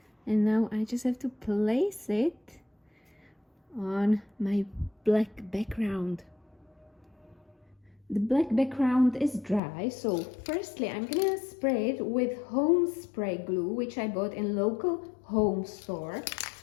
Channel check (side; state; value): right; drops out; at 9.6 s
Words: And now I just have to place it on my black background. The black background is dry, so firstly I'm gonna spray it with home spray glue, which I bought in local home store.